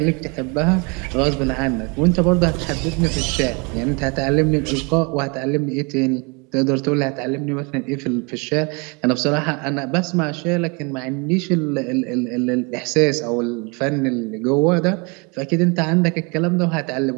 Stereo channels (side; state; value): left; quieter; 30.9 dB